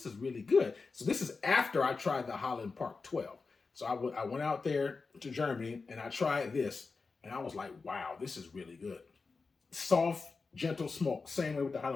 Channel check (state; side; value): quieter; right; 4.4 dB